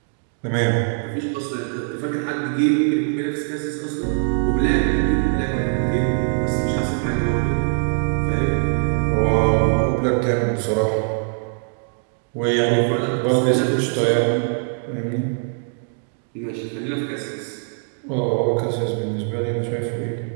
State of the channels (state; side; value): silent; left; 60 dB below the other